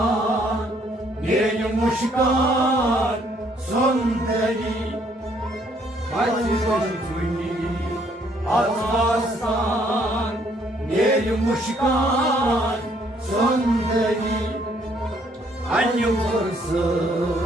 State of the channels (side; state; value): both; normal; correlation 0.66